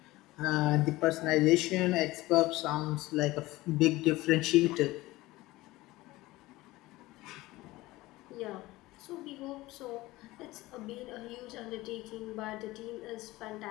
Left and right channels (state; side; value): quieter; right; 19.0 dB